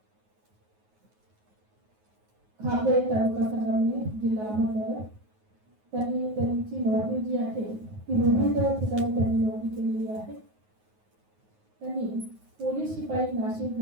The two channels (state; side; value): late; left; 9.4 ms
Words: Khape taluka Sangamner जिल्हा अहमदनगर. त्यांची नोकरी जी आहे ती विविध ठिकाणी त्यांनी नोकरी केलेली आहे. त्यांनी पोलीस शिपाई नाशिक